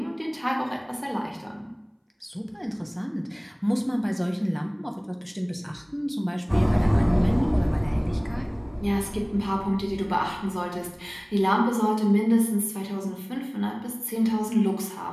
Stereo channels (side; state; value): both; identical; correlation 1.00